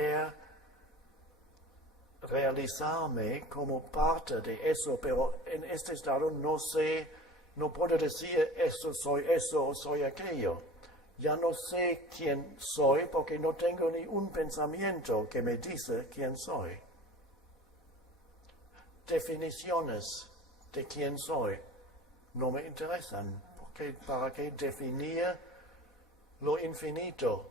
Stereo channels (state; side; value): normal; both; correlation 0.40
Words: realizarme como parte de eso, pero en este estado no puedo decir eso o soy aquello. Ya no sé quién soy porque no tengo ni un pensamiento que me dice quién soy. Definiciones de quién soy no me interesan, porque ¿para qué definir lo infinito